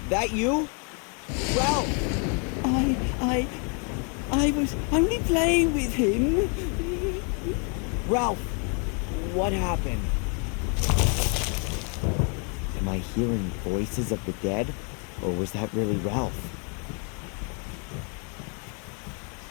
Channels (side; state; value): right; quieter; 37.8 dB